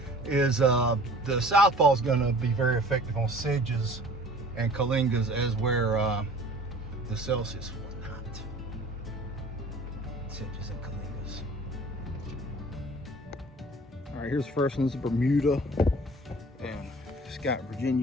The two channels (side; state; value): both; normal; correlation 0.47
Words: is the Southpaw is going to be very effective on sedges and Kalingas, as where the Celsius will not. Sedges and Kalingas. All right, here's the first one. This is Bermuda, and it's got